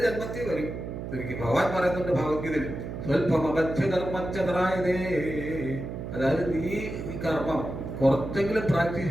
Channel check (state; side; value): noise; right; hum, 7 dB below the sound